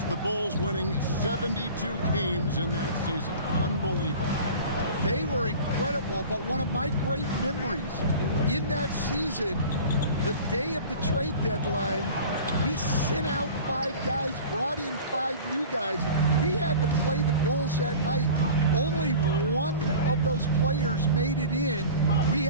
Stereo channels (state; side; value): inverted; both; correlation -0.39